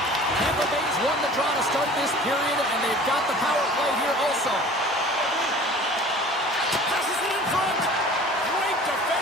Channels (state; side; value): normal; both; correlation 0.44